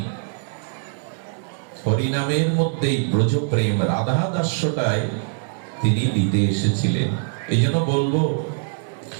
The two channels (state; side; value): silent; left; 62 dB below the other